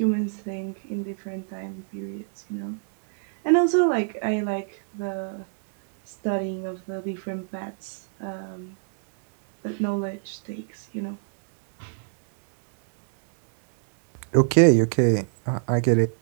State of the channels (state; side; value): silent; left; digital silence